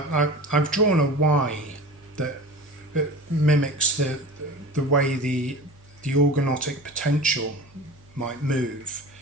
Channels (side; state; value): right; noise; hum, 28 dB below the sound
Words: I've drawn a Y that mimics the way the organotic potential might move